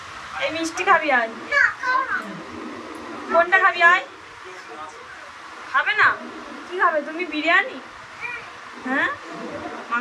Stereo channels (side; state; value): both; identical; correlation 1.00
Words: এই মিষ্টি খাবি আজ? কোনটা খাবি আজ? খাবে না? কি খাবে তুমি? বিরিয়ানি? হ্যাঁ,